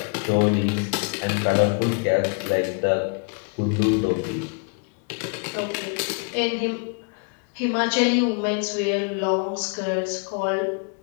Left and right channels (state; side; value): quieter; right; 37.5 dB